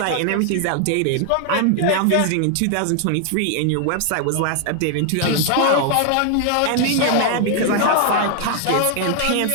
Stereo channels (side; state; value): both; different; correlation 0.00